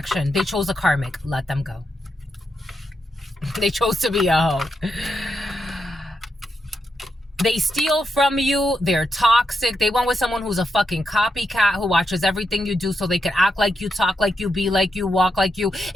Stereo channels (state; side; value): normal; both; correlation 0.84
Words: They chose a karmic. Let them go. They chose to be a hoe. They steal from you. They're toxic. They went with someone who's a fucking copycat who watches everything you do so they can act like you, talk like you, be like you, walk like you,